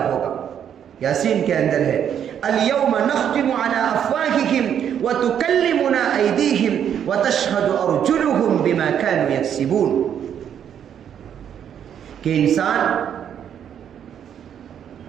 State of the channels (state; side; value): quieter; left; 9.0 dB